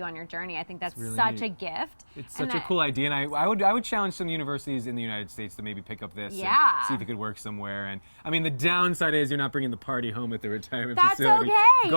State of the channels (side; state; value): both; inverted; correlation -1.00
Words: on your journey. I think that's really such neat. a gift. It's And such a cool idea, and I would challenge some universities in the United States to maybe pick up this Yeah. and see if it could work somewhere. And I mean, the downside is you're not bringing the party home at the retirement That's facility. okay. You